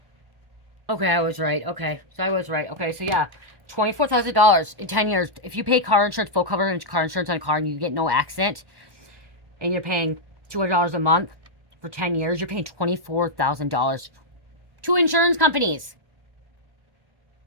Okay, I was right. Okay, so I was right. Okay, so yeah, $24,000 in 10 years. If you pay car insurance, full coverage car insurance on a car, and you get no accident, and you're paying $200 a month for 10 years, you're paying $24,000 to insurance companies.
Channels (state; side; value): late; left; 1.1 ms